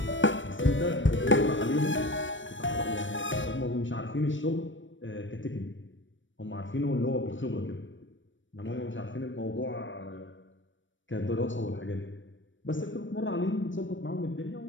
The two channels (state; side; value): late; right; 0.56 ms